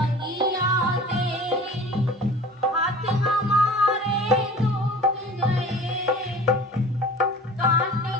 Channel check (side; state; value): both; normal; correlation 0.42